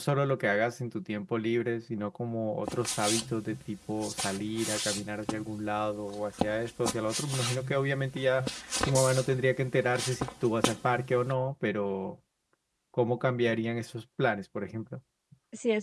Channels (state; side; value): identical; both; correlation 1.00